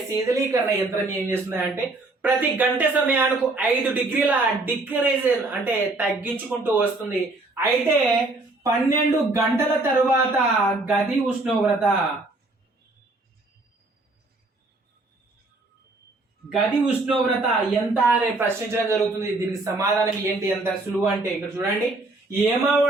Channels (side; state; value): left; quieter; 3.1 dB